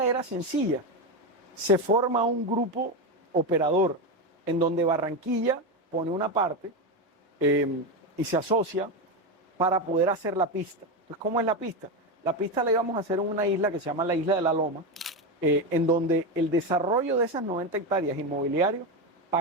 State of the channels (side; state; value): both; normal; correlation 0.13